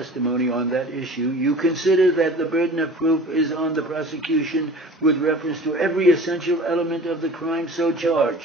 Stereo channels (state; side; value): normal; both; correlation 0.41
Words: on that issue, you consider that the burden of proof is on the prosecution with reference to every essential element of the crime so